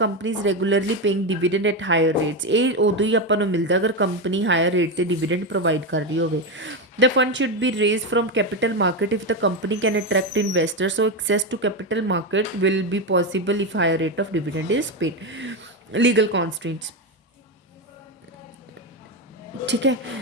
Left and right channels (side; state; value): both; normal; correlation 0.12